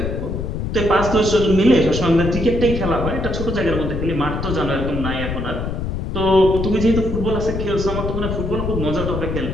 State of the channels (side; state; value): left; noise; rumble, 3 dB below the sound